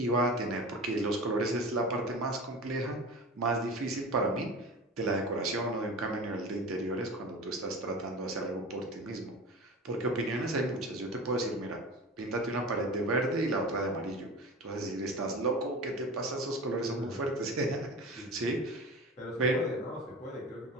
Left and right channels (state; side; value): normal; both; correlation 0.33